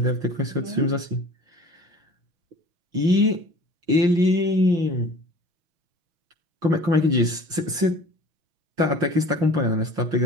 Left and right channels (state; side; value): late; left; 5.7 ms